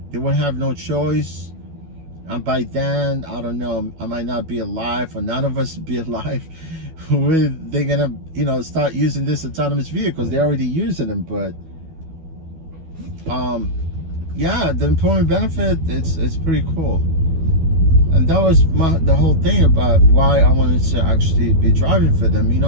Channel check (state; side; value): late; left; 12 ms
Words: they won't have no choice. And by then, I don't know, I might not be alive, or none of us be alive. They're gonna, you know, start using this autonomous vehicles. They're already using them, but yeah, the employment benefit, it's pretty cool. And that was the whole thing about why I wanted to actually be driving for them, you